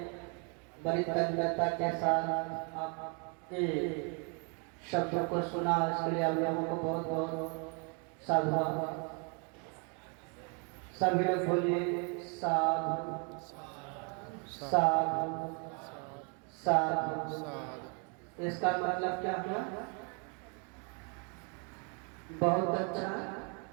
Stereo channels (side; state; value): left; quieter; 36.5 dB